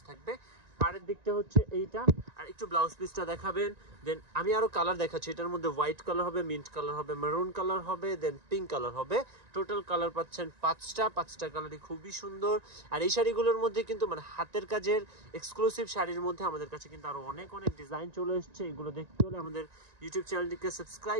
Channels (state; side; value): late; left; 1.9 ms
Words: থাকবে। পাড়ের দিকটা হচ্ছে এইটা। আর একটু ব্লাউজ পিসটা দেখাবেন। দেন আমি আরো কালার দেখাচ্ছি। এটার মধ্যে হোয়াইট কালার হবে, মিন্ট কালার হবে, মেরুন কালার হবে, দেন পিঙ্ক কালার হবে। টোটাল কালার পাচ্ছেন পাঁচটা কালারই খুবই সুন্দর। আর এই শাড়িগুলোর মধ্যে কিন্তু মানে হাতের কাজের এক্সক্লুসিভ শাড়ির মধ্যে আমাদের কাছে কিন্তু আরো অনেক ডিজাইন চলে এসেছে। এগুলো দেখতে হলে আমাদের ইউটিউব চ্যানেলটিকে